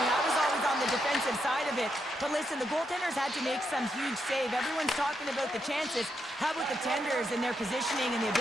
I was always on the defensive side of it. But listen, the goaltenders had to make some huge save. Everyone's talking about the chances. How about the tenders and their positioning and the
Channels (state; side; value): normal; both; correlation 0.81